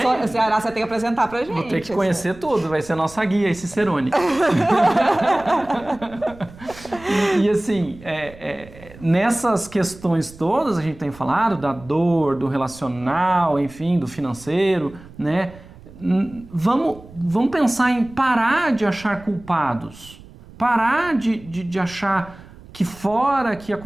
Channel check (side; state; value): right; noise; rumble, 20 dB below the sound